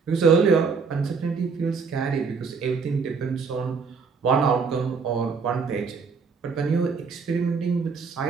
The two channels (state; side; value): quieter; left; 5.3 dB